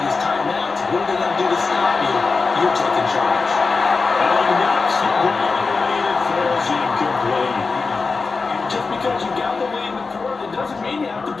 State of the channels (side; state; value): right; quieter; 4.4 dB